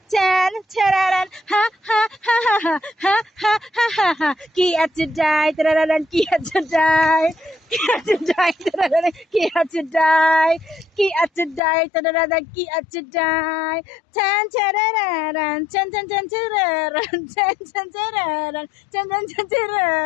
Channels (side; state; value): right; drops out; at 11.6 s